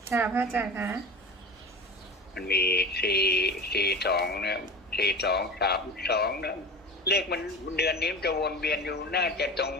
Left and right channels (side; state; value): both; normal; correlation 0.33